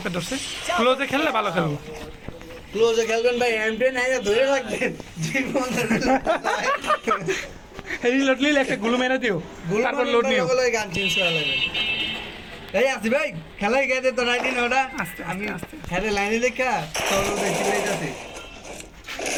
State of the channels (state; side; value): identical; both; correlation 1.00